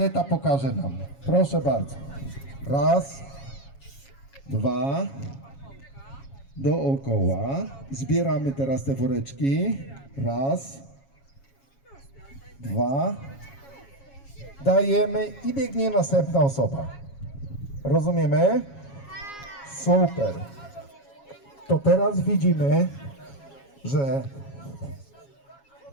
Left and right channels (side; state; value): right; late; 7.3 ms